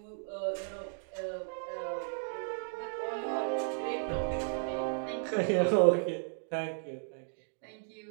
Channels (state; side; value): silent; left; digital silence